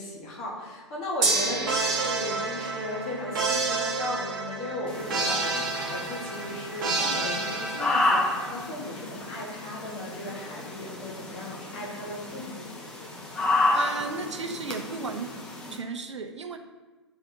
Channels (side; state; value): both; normal; correlation 0.40